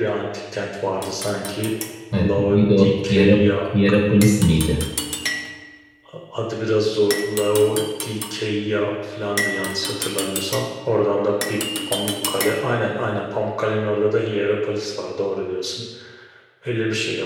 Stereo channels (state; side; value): identical; both; correlation 1.00